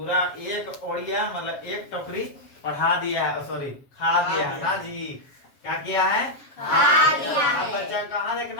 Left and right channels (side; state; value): right; late; 7.4 ms